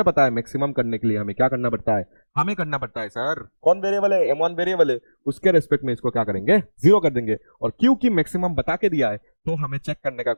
पता है मैक्सिमम करने के लिए हमें क्या करना पड़ता है, हमें करना पड़ता है सर, कौन वेरिएबल है, m1 वेरिएबल है, उसके रेस्पेक्ट में इसको क्या करेंगे, जीरो कर देंगे, और क्योंकि मैक्सिमम बता के दिया है तो हमें चेक करने का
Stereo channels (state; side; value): inverted; both; correlation -1.00